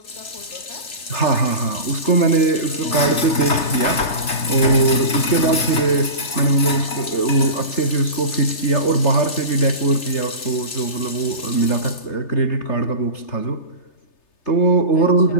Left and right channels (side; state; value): right; late; 3.3 ms